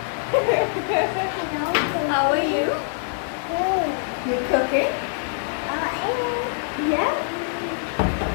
How are you? You cooking? Yeah.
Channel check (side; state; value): right; silent; digital silence